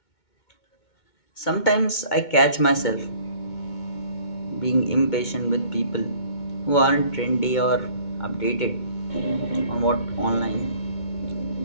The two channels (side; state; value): right; late; 2.2 ms